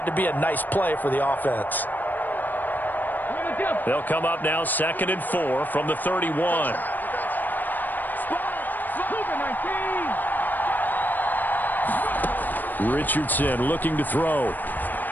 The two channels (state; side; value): late; right; 0.088 ms